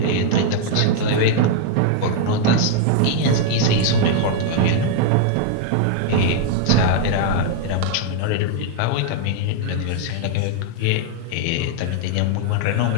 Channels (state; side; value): different; both; correlation 0.00